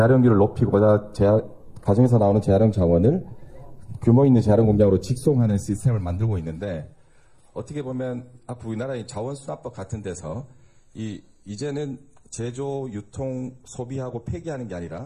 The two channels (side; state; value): both; identical; correlation 1.00